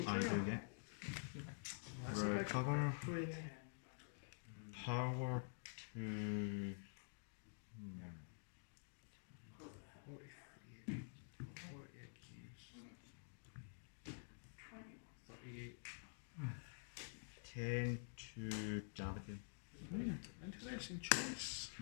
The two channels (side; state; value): right; silent; digital silence